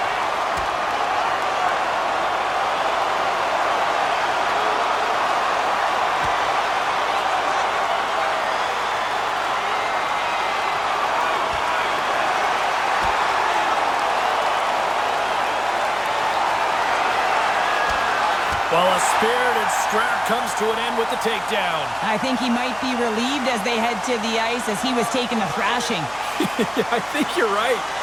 Well, a spirited scrap comes to an end with the takedown. I think he might be relieved as they head to the ice as he was taking a thrashing. Yeah, I think you're right.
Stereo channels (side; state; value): right; noise; hum, 23 dB below the sound